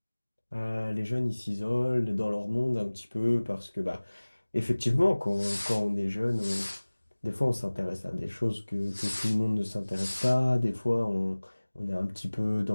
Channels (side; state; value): both; inverted; correlation -1.00